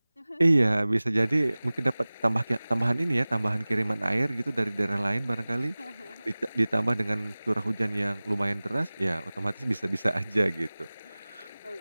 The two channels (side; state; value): both; inverted; correlation -0.99